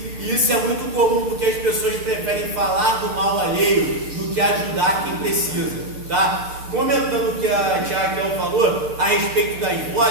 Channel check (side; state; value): left; late; 6.7 ms